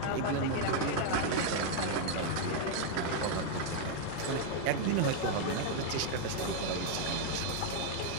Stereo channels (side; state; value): both; different; correlation 0.00